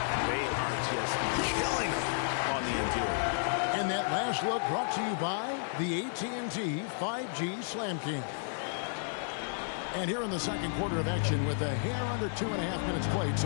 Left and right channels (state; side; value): silent; right; 56 dB below the other